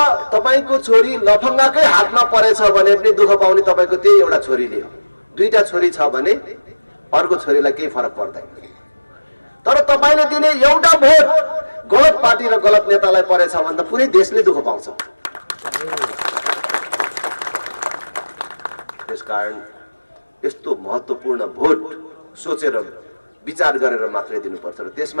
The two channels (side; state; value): both; inverted; correlation -1.00